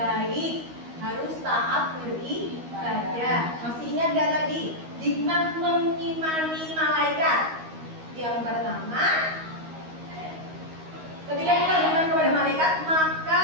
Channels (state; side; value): late; left; 13 ms